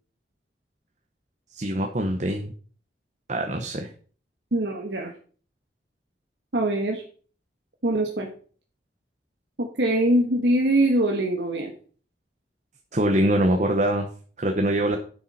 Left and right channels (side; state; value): both; normal; correlation 0.52